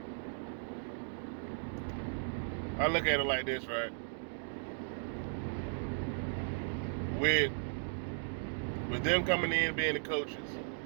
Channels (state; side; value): silent; left; digital silence